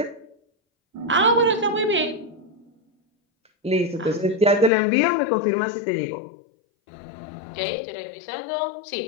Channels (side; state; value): right; drops out; at 4.7 s